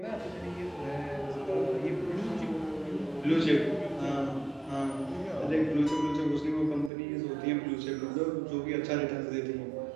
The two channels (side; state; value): left; drops out; at 6.9 s